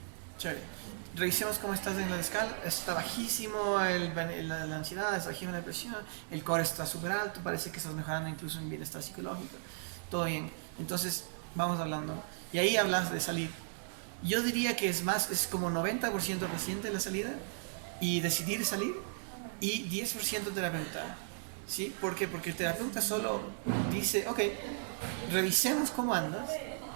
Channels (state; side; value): silent; left; 54 dB below the other